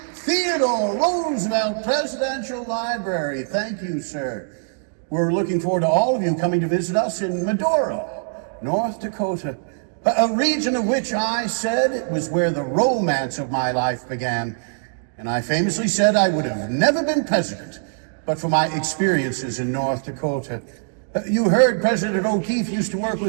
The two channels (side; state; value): left; silent; digital silence